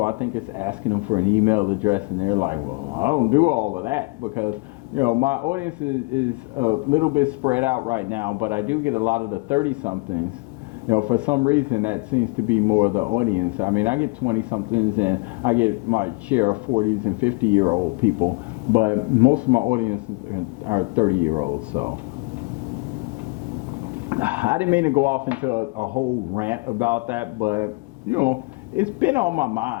I think it's asking them for an email address, and they're like, well, I don't do all of that, because, you know, my audience is a little bit spread out right now, but I do get a lot of the 30-somethings. You know, for some reason that seems to be more of the audience. I mean, I get 20-somethings and I get my share of 40s and 50-year-old people, but most of my audience are 30-year-olds. So I didn't mean to go off into a whole rant about that, but, you know, it's been on my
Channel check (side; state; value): right; quieter; 28.9 dB